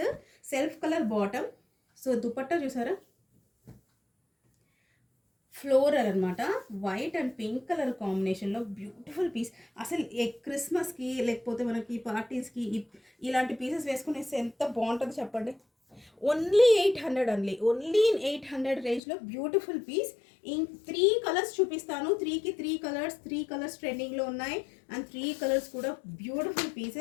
Self colour bottom. So dupatta చూసారా, ఫ్లోరల్ అనమాట. వైట్ అండ్ పింక్ కలర్ కాంబినేషన్లో బ్యూటిఫుల్ పీస్. అసలు క్రిస్మస్కి లేకపోతే మనకి పార్టీస్కి ఇలాంటి పీసెస్ వేసుకునేస్తే ఎంత బాగుంటుందో చెప్పండి. ఓన్లీ 800 అండి, ఓన్లీ ఇన్ 800 రేంజ్లో బ్యూటిఫుల్ పీస్. ఇన్ 3 కలర్స్ చూపిస్తాను. 3కి 3 కలర్స్ ట్రెండింగ్లో ఉన్నాయి. అండ్ 3 కలర్స్ కూడా బ్యూటిఫుల్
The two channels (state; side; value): drops out; right; at 19.0 s